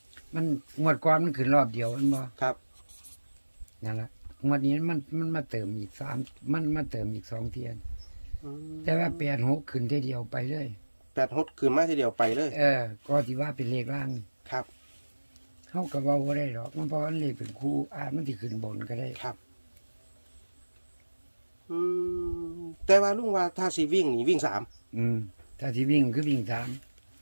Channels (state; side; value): inverted; both; correlation -1.00